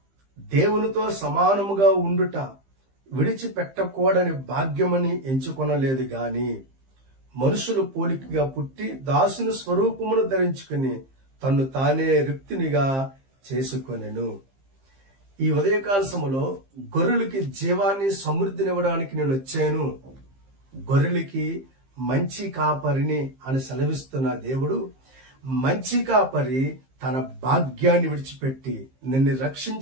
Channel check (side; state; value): left; late; 15 ms